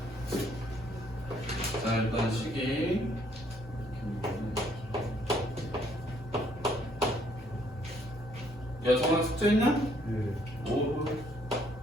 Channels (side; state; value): both; normal; correlation 0.66